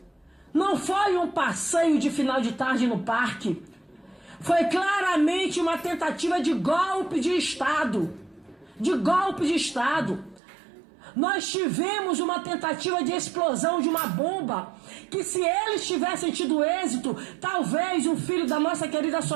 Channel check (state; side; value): drops out; left; at 10.4 s